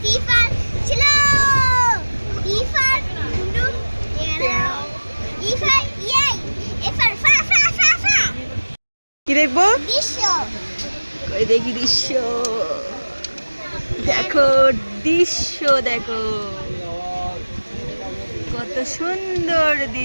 C for slow, D for do, E for ইয়ে, এ ফর ফা ফা ফা ফা। কি দেখবো? দৃশ্য। কই দেখি দৃশ্য। দেখো দৃশ্য দেখো, কত সুন্দর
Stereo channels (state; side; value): inverted; both; correlation -1.00